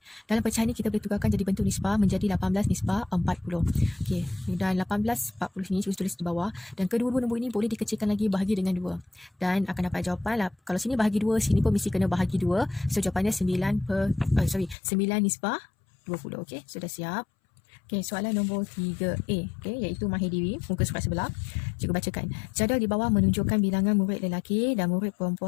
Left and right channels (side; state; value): right; drops out; at 14.8 s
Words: Dalam pecahan ni kita boleh tukarkan jadi bentuk nisbah menjadi 18 nisbah 40. Okey, dan 18/40 sini cikgu tulis di bawah dan kedua-dua nombor ini boleh dikecilkan lagi, bahagi dengan 2. Dan akan dapat jawapan lah. Kalau sini bahagi 2, sini pun mesti kena bahagi 2. So jawapannya 9 nisbah 20. Okey, sudah siap. Okey, soalan nombor 3A, okey, iaitu mahir diri, muka surat sebelah. Cikgu bacakan. Jadual di bawah menunjukkan bilangan murid lelaki dan murid